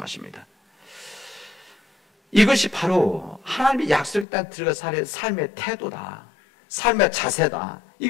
이것이 바로 하나님의 약속의 땅에 들어가 살 삶의 태도다, 삶의 자세다,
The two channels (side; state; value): right; drops out; at 4.2 s